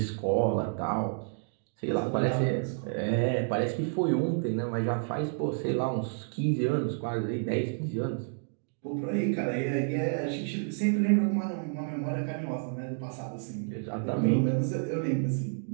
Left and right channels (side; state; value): left; silent; digital silence